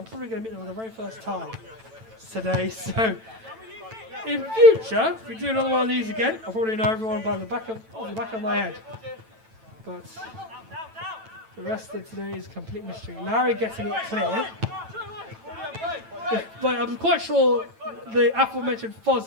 going to meet them for the very first time today. So in future, if we do another one of these again, I'll probably know everyone by the back of my head. But the rest of today is complete mystery. Larry getting it clear. But I'm quite sure the aforementioned Foz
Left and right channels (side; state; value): left; late; 9.0 ms